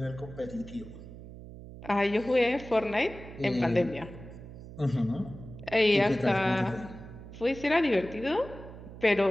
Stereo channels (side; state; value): right; noise; hum, 14 dB below the sound